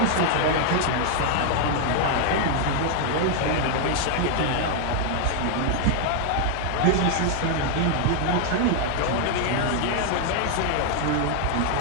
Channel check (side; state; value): both; different; correlation 0.00